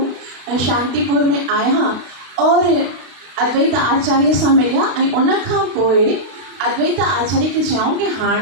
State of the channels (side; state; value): left; late; 32 ms